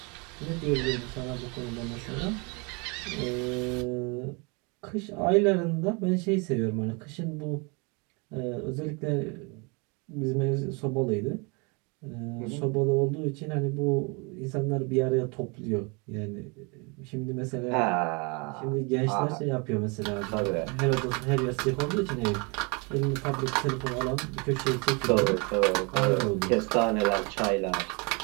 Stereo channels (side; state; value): left; quieter; 30.9 dB